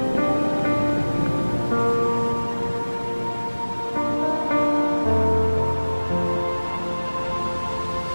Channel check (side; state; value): both; inverted; correlation -1.00